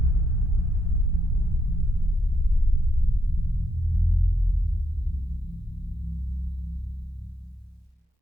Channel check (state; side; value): normal; both; correlation 0.79